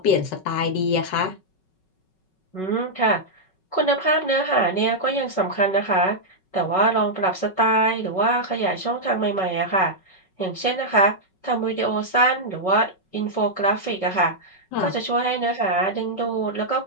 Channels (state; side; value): late; right; 5.4 ms